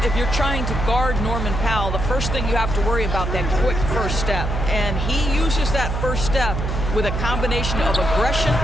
if you're trying to guard Norman Powell, the first thing you have to worry about that quick first step. And he uses that first step with a combination of aggression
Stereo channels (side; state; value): right; noise; hum, 2 dB below the sound